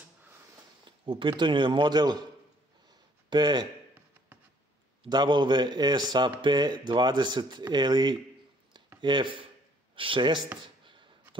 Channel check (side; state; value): both; normal; correlation 0.62